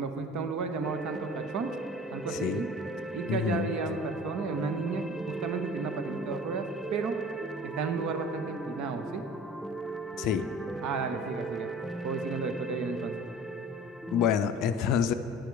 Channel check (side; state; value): both; normal; correlation 0.43